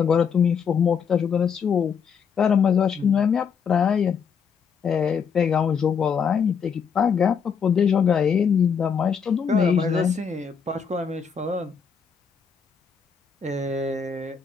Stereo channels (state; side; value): quieter; right; 6.6 dB